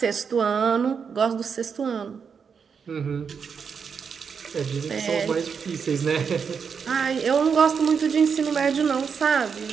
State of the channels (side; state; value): left; quieter; 6.3 dB